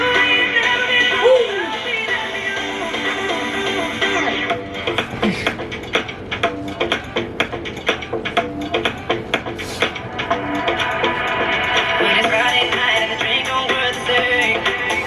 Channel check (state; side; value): identical; both; correlation 1.00